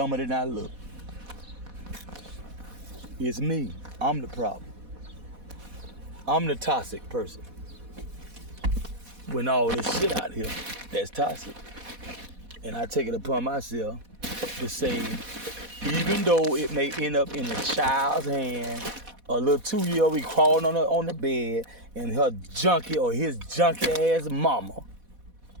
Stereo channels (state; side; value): late; left; 4.1 ms